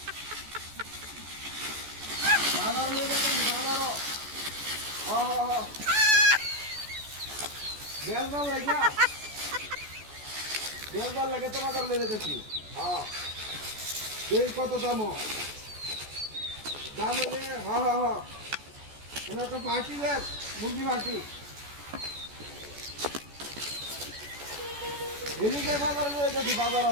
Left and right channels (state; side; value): late; left; 14 ms